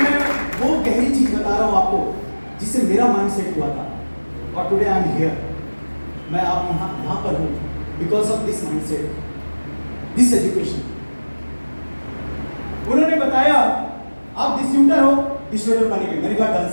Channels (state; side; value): inverted; both; correlation -1.00